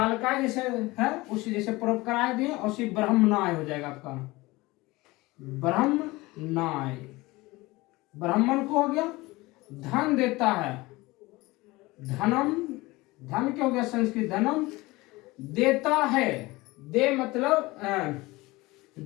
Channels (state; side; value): quieter; right; 21.2 dB